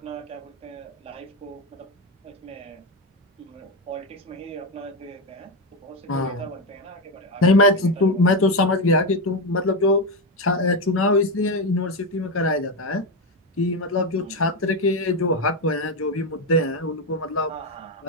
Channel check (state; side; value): normal; both; correlation 0.11